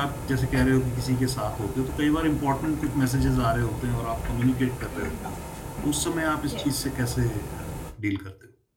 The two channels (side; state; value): both; identical; correlation 1.00